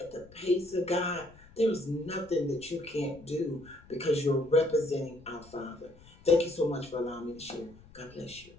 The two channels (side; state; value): left; noise; rumble, 24 dB below the sound